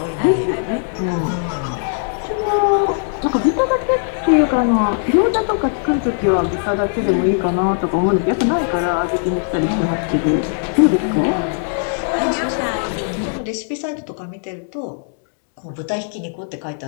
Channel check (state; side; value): silent; right; digital silence